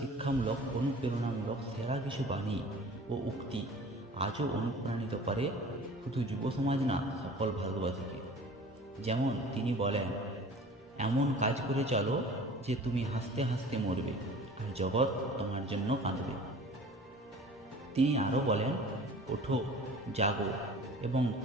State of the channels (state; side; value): normal; both; correlation 0.43